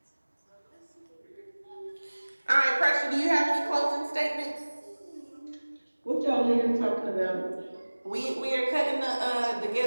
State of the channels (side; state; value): both; inverted; correlation -1.00